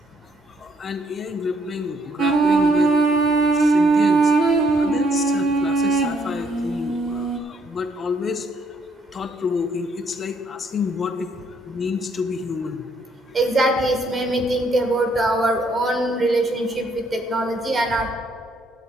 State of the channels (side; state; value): both; normal; correlation 0.69